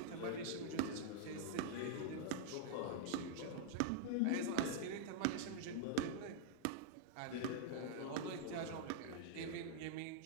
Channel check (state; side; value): different; both; correlation -0.02